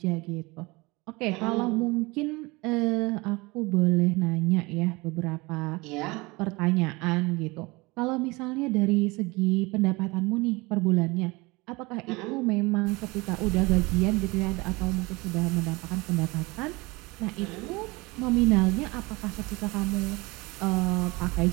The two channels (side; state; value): left; quieter; 24.1 dB